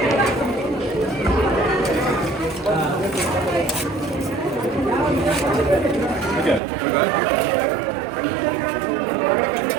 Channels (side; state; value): left; drops out; at 6.6 s